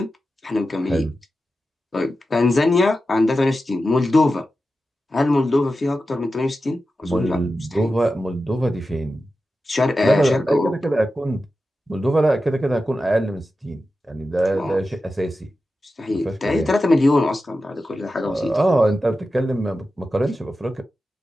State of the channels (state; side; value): normal; both; correlation 0.92